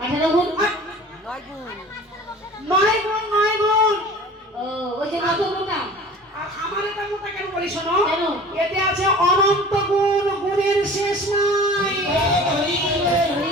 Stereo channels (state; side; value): normal; both; correlation 0.42